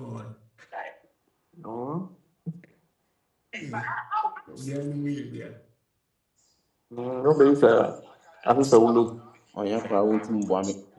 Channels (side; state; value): both; identical; correlation 1.00